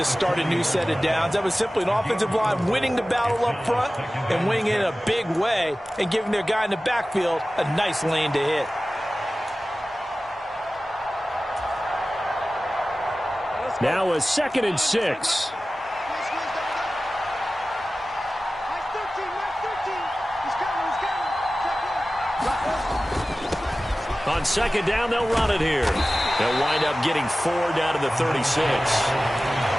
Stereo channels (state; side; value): normal; both; correlation 0.96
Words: start a new set of downs. That was simply an offensive line winning the battle up front and winning it in a big way and giving their guy in the backfield a nice lane to hit. Now a 2nd and 6. On second down, they'll run it here. They'll wind up getting 4 down to the 36.